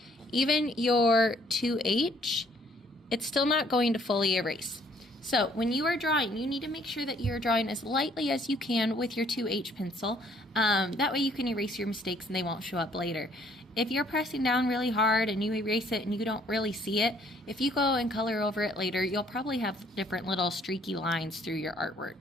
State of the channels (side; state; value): both; normal; correlation 0.63